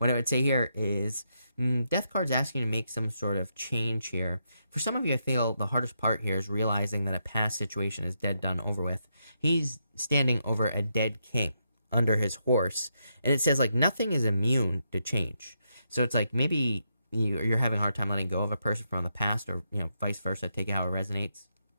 I would say here is, Death card's asking you to make some sort of change here. For some of you, I feel the hardest part here is realizing that a past situation is dead, done, over with. He's standing over a dead king under his horse, and it says like nothing is immune to change. So it's like maybe you're having a hard time letting go of a person from the past, or vice versa. Take it how it resonates.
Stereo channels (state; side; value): inverted; both; correlation -0.81